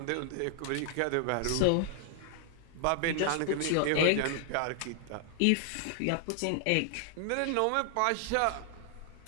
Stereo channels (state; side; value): different; both; correlation 0.00